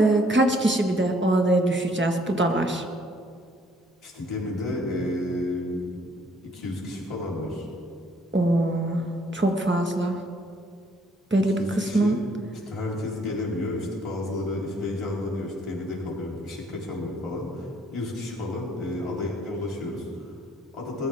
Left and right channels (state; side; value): normal; both; correlation 0.64